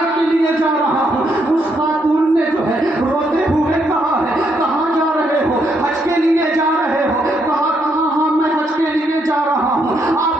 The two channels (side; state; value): both; normal; correlation 0.76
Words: کے لیے جا رہا ہوں. اس خاتون نے جو ہے روتے ہوئے کہا ہے, کہاں جا رہے ہو؟ حج کے لیے جا رہے ہو؟ کہا کہاں, ہاں میں حج کے لیے جا رہا ہوں,